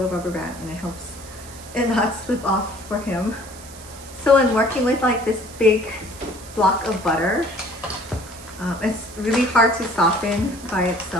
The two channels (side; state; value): right; noise; hiss, 18 dB below the sound